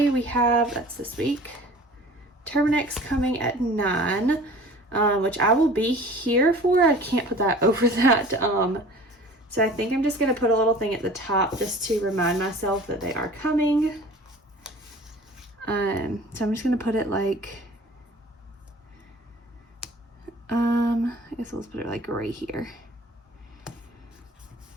we have, that's this week, Terminex coming at 9, which I will be here for. I can't put that over that. So I think I'm just gonna put a little thing at the top just to remind myself that they are coming. So I'm just gonna put it like, I guess let's put it like right here.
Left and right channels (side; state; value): both; normal; correlation 0.45